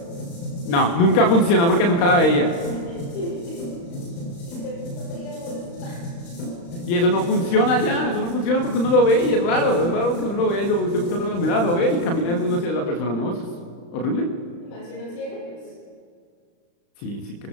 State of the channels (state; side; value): late; right; 35 ms